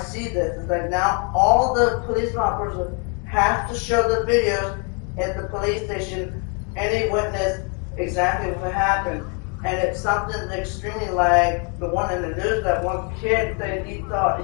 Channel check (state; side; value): quieter; right; 36.7 dB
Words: this. It's like now all the police officers have to show the videos at the police station, any witness exactly what happened. And it's something extremely like the one in the news, that one kid that he